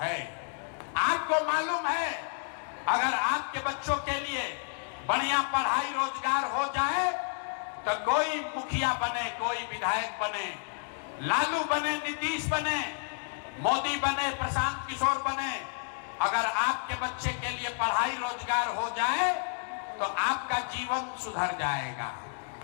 आपको मालूम है, अगर आपके बच्चों के लिए बढ़िया पढ़ाई रोजगार हो जाए तो कोई मुखिया बने, कोई विधायक बने, लालू बने, नीतीश बने, मोदी बने, प्रशांत किशोर बने, अगर आपके बच्चे के लिए पढ़ाई रोजगार हो जाए तो आपका जीवन सुधर जाएगा।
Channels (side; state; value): right; silent; 57 dB below the other